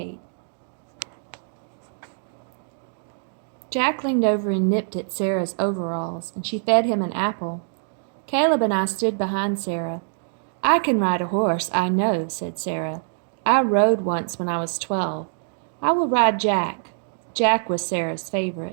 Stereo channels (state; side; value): silent; left; digital silence